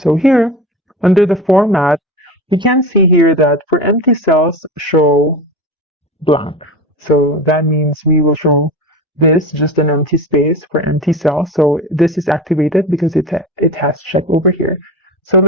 here, under the Format, we can see here that for empty cells, show blank. So that means we will show this, just an empty space for empty cells. So this is activated because it has check over here. So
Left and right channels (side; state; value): both; normal; correlation 0.28